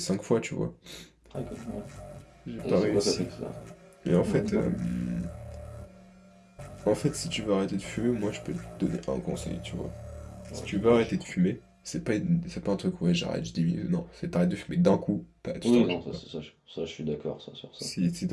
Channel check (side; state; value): both; identical; correlation 1.00